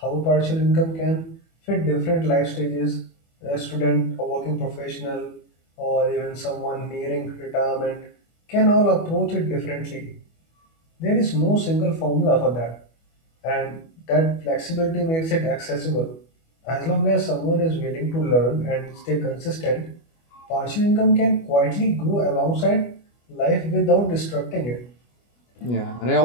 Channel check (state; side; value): late; right; 25 ms